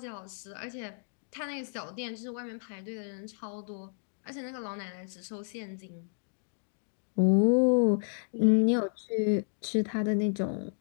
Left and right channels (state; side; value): silent; right; digital silence